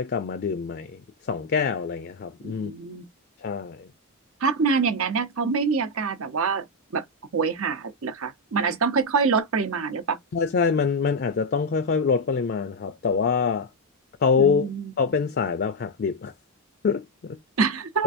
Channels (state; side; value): normal; both; correlation 0.01